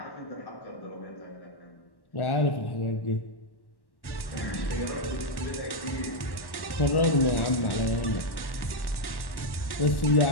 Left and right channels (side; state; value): right; late; 1.1 ms